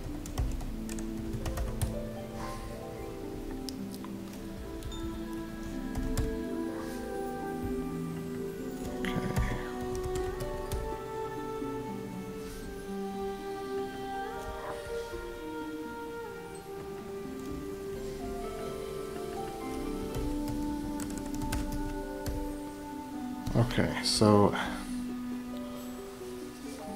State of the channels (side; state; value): both; identical; correlation 1.00